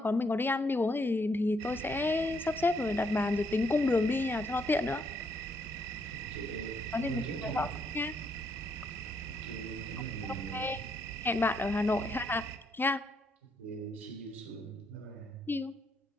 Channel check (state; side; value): normal; both; correlation 0.74